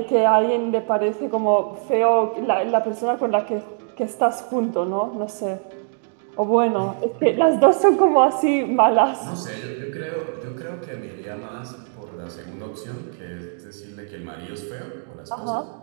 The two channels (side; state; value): left; silent; digital silence